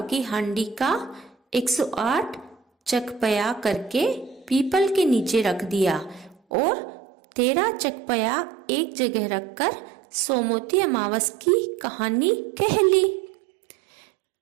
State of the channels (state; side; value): drops out; left; at 6.4 s